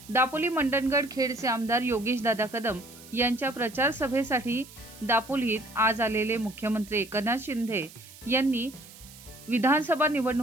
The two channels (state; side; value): noise; right; hiss, 19 dB below the sound